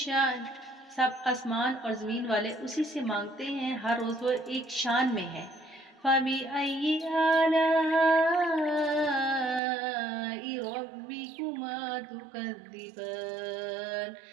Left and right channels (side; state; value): left; drops out; at 9.6 s